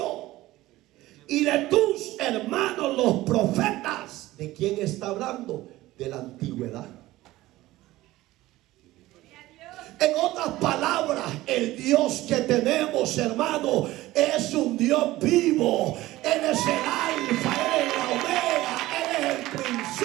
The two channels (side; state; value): left; quieter; 17.2 dB